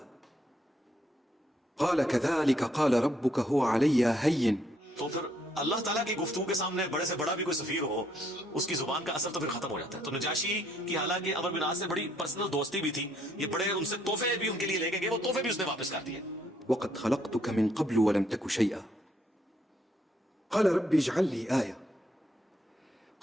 قال كذلك قال ربك هو علي هين. تو پھر اللہ تعالیٰ کی گفتگو کے سامنے بڑے سے بڑا بھی کوئی سفیر ہو، اس کی زبان کا اثر تو پھر ختم ہو جاتا ہے. تو نجاشی کی حالانکہ عمر بن عاص سے بڑی پرسنل دوستی بھی تھی، یہ بڑے ان سے تحفے بھی ان کے لیے لے کے گئے، وہ تحفے بھی اس نے واپس کر دیے. وقد خلقتك من قبل ولم تك شيئا قال رب اجعل لي آية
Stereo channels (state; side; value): normal; both; correlation 0.70